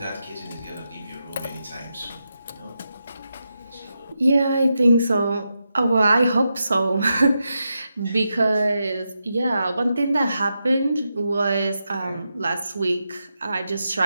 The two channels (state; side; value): inverted; both; correlation -0.87